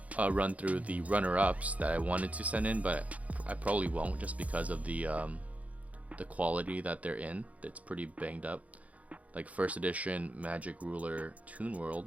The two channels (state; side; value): late; left; 0.069 ms